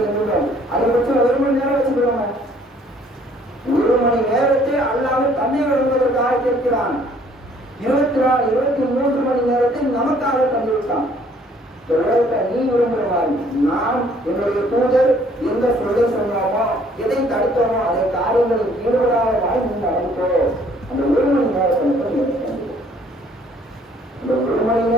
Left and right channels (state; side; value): normal; both; correlation 0.60